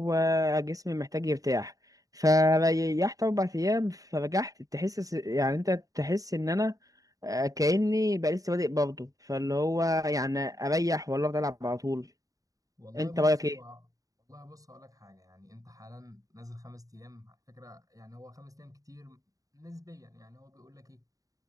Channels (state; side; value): late; left; 0.17 ms